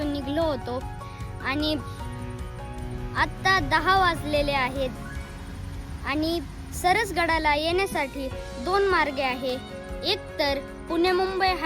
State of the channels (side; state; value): both; identical; correlation 1.00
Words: निघलो होतो आणि आत्ता 10 वाजलेले आहेत. आणि सरसगडाला येण्यासाठी 2 मार्ग आहे. एक तर पुणे मुंबई